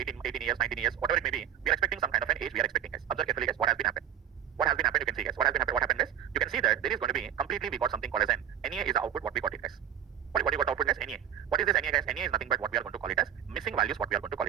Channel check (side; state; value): left; quieter; 10.4 dB